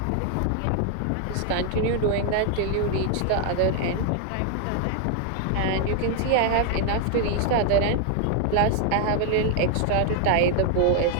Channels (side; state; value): both; different; correlation 0.00